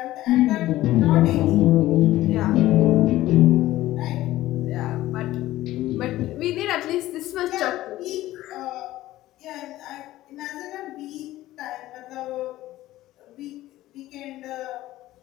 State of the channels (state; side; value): quieter; right; 15.7 dB